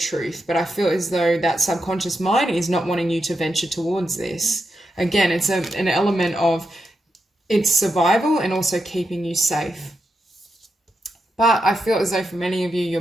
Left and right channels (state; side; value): normal; both; correlation 0.85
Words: but I feel as though that subconscious mind is not wanting you to venture towards this. Again, it's an element of its survival and also keeping you safe. But I feel as though for many of you, you're